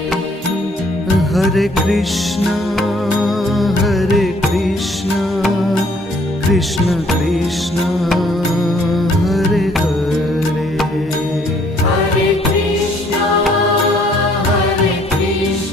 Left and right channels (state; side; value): normal; both; correlation 0.63